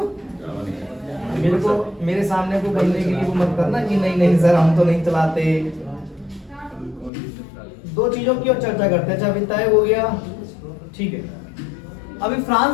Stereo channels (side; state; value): right; drops out; at 7.1 s